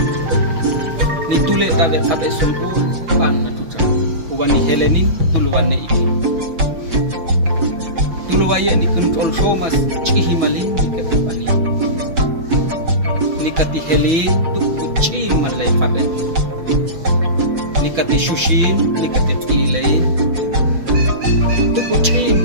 Ni tule tabe kabe sungkul pan la tucah. Uwani helenin tuluwane iki. Tuluwaya ni kontrol somas cihimalin ni ketipani. Nikati helin tuk uci malay kabe. Nikati shushin, nikati pilain. Tuk uci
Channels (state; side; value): late; left; 6.1 ms